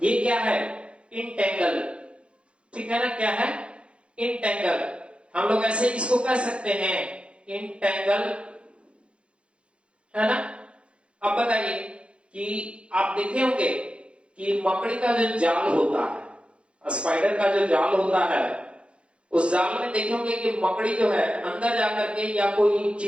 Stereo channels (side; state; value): left; late; 0.059 ms